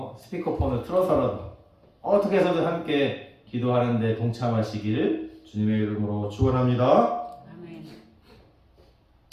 스피커폰을 틀어서라도 어떻게 해서든 함께 기도하는데 동참하시기를 주님의 이름으로 축원합니다. 아멘.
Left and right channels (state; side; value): identical; both; correlation 1.00